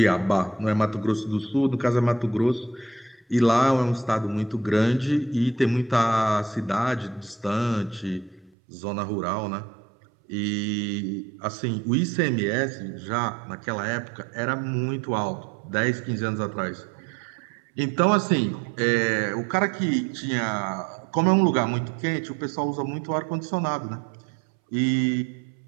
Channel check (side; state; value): left; drops out; at 8.5 s